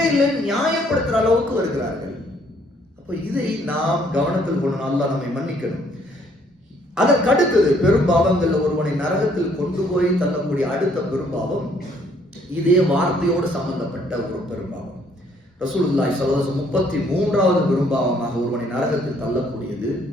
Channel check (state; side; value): normal; both; correlation 0.65